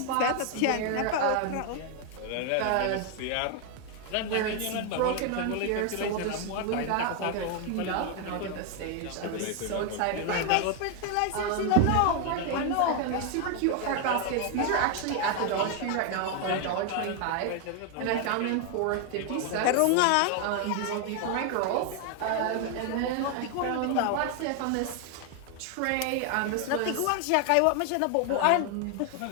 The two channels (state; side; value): different; both; correlation 0.00